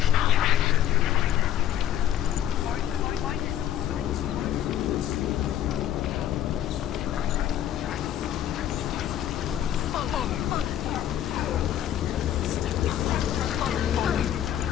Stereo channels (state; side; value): quieter; right; 11.0 dB